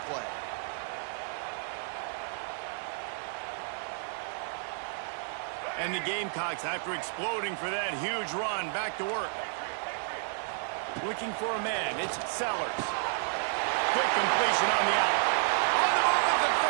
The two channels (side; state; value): left; silent; 55 dB below the other